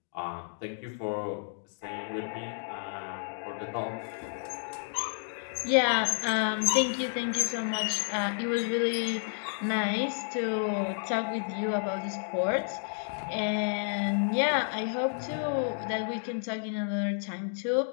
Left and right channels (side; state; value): right; silent; digital silence